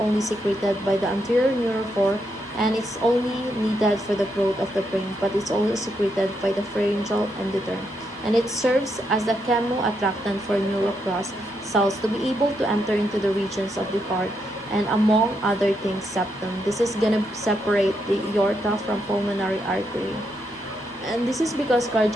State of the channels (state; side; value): normal; both; correlation 0.80